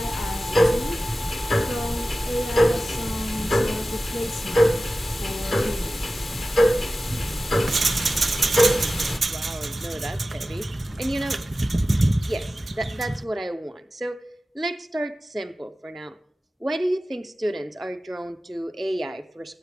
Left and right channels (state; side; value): normal; both; correlation 0.95